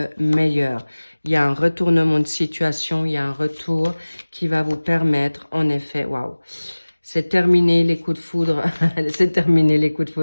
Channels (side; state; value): both; inverted; correlation -1.00